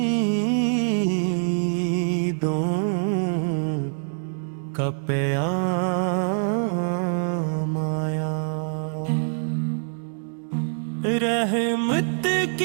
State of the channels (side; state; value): left; silent; 62 dB below the other